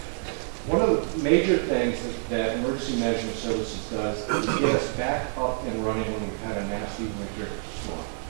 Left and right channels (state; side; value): silent; left; 60 dB below the other